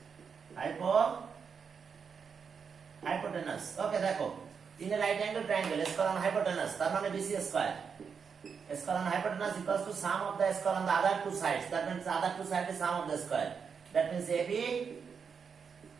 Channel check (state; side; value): quieter; left; 6.2 dB